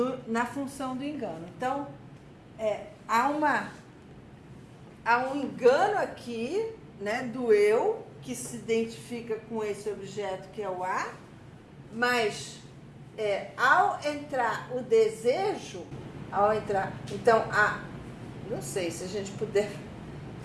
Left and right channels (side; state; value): both; identical; correlation 1.00